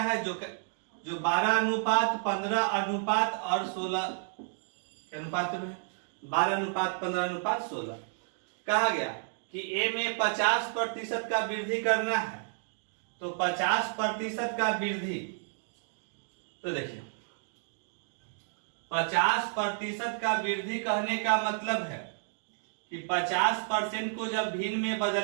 है जो 12 अनुपात 15 अनुपात और 16 के अनुपात में 12 अनुपात 15 अनुपात 16 कहा गया कि ए में 50% का वृद्धि करना है। तो 50% का वृद्धि, तो देखिए 50% का वृद्धि कहने का मतलब है कि 50% को जब भिन्न में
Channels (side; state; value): left; silent; digital silence